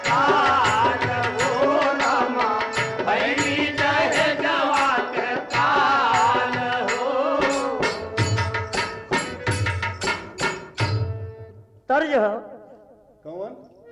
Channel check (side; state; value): both; identical; correlation 1.00